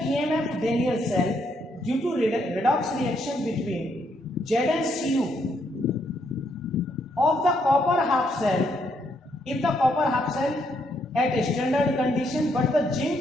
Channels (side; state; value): both; normal; correlation 0.74